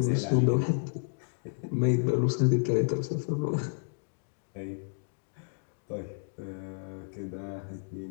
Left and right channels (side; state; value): right; silent; digital silence